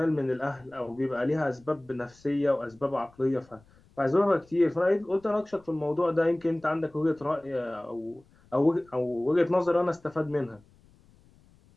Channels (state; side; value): noise; left; rumble, 29 dB below the sound